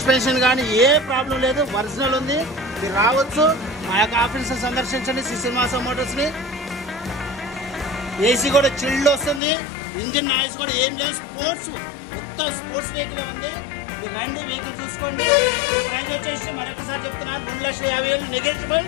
కానీ ఏ ప్రాబ్లం లేదు. ఒరిజినల్ ఉంది. మీరు రావచ్చు. మా యొక్క ఆఫీస్ సందర్శించండి శ్రీ శ్రీనివాస మోటార్స్ ని. AC కూడా చిల్డ్ వస్తుంది. ఇంజన్ నాయిస్ కూడా ఏం లేదు. మొత్తం స్పోర్ట్స్ వెహికల్ ఉంది. మీరు రండి, వెహికల్ చూసుకోండి. ప్రైస్ వచ్చేసి మరొకసారి చెప్తున్నాను 2,50,000 నెగోషియబుల్.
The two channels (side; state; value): right; drops out; at 9.4 s